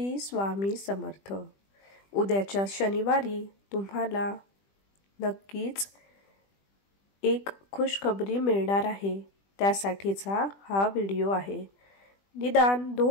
स्वामी समर्थ। उद्याच्या शनिवारी तुम्हाला नक्कीच एक खुशखबरी मिळणार आहे, त्यासाठीचा हा व्हिडिओ आहे। निदान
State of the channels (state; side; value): late; right; 20 ms